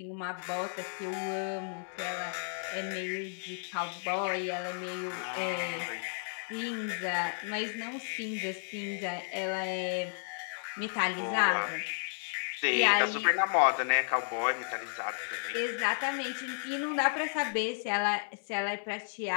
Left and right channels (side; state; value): right; silent; digital silence